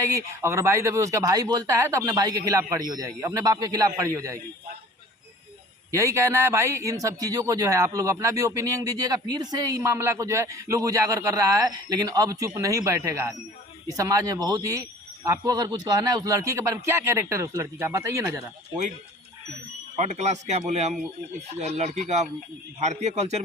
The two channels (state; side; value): normal; both; correlation 0.47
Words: अगर भाई दबे उसका भाई बोलता है तो अपने भाई के खिलाफ खड़ी हो जाएगी, अपने बाप के खिलाफ खड़ी हो जाएगी। यही कहना है भाई। इन सब चीज़ों को जो है आप लोग अपना भी ओपिनियन दीजिएगा। फिर से ये मामला को जो है लोग उजागर कर रहा है, लेकिन अब चुप नहीं बैठेगा आदमी। इस समाज में बहुत ही, आपको अगर कुछ कहना है उस लड़की के बारे में, क्या कैरेक्टर है उस लड़की का बताइए ना जरा। कोई 3rd क्लास क्या बोले हम, उस लड़की का भारतीय कल्चर